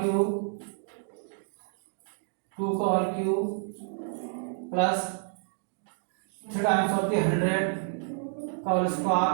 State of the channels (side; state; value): left; silent; digital silence